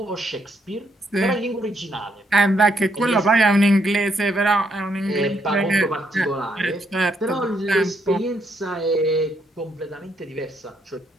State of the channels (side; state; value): both; normal; correlation 0.74